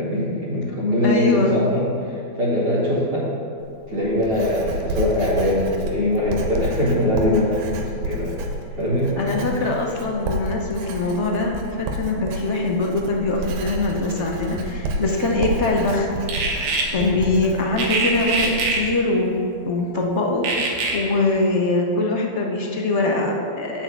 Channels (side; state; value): left; late; 12 ms